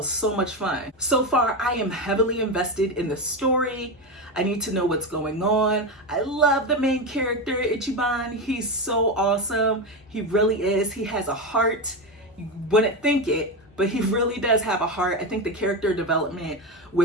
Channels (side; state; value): both; normal; correlation 0.15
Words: so much fun. So far, I am heavily invested in the story. I need to know what's going on. I love the main character, Ichiban. He's so awesome. He really is. He has a heart. You wouldn't think it, but he really does have a heart. I think the character development